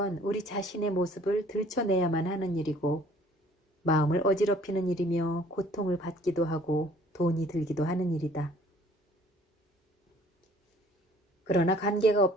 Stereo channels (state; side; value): normal; both; correlation 0.56